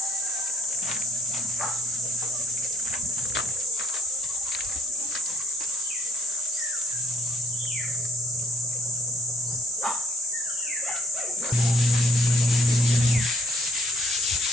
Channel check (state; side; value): normal; both; correlation 0.62